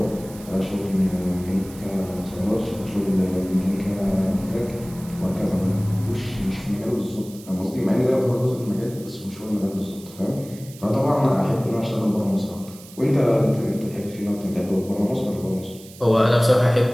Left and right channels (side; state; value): right; noise; hiss, 20 dB below the sound